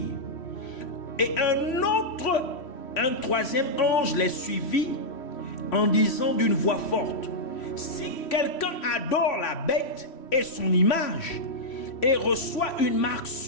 et un troisième ange les suivit en disant d'une voix forte: si quelqu'un adore la bête et son image et reçoit une marque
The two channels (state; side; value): late; right; 3.1 ms